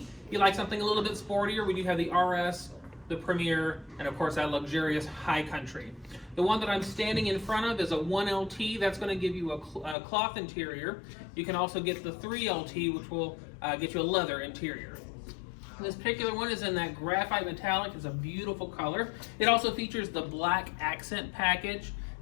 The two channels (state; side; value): drops out; right; at 10.0 s